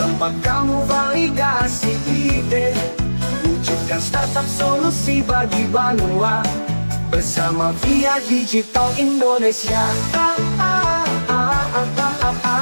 kamu validasi ide, wujudkan startup solusi bagi Banua, bersama Via Digital Indonesia.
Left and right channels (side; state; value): both; inverted; correlation -1.00